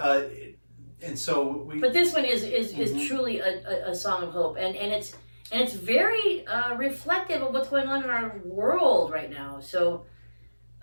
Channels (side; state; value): both; inverted; correlation -1.00